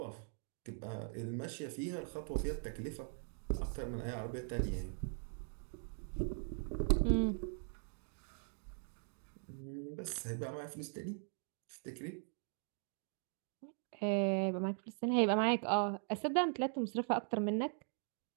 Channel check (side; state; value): left; silent; 51 dB below the other